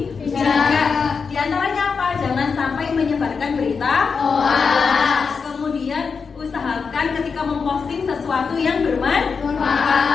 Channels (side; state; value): right; quieter; 5.4 dB